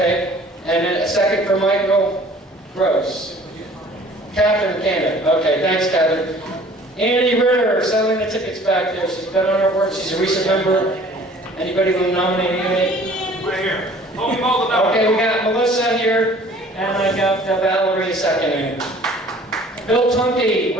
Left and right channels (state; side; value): normal; both; correlation 0.51